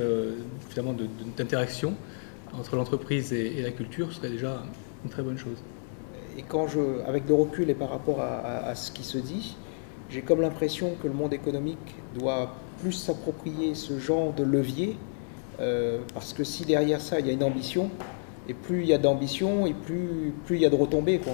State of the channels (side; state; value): right; silent; 58 dB below the other